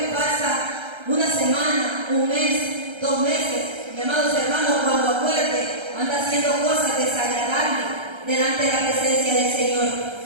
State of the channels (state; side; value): late; left; 1.3 ms